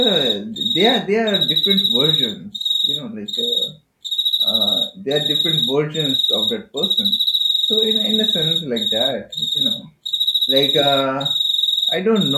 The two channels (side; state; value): both; identical; correlation 1.00